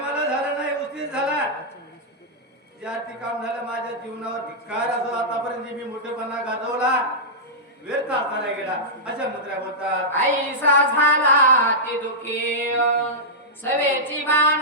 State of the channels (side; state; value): both; normal; correlation -0.11